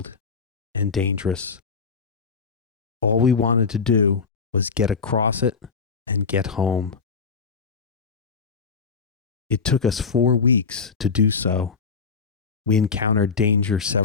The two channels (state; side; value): quieter; right; 5.2 dB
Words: and dangerous. All we wanted to do was get across it and get home. It took us 4 weeks to do so. We encountered danger